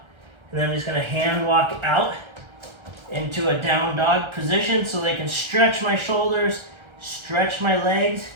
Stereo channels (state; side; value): late; left; 1.3 ms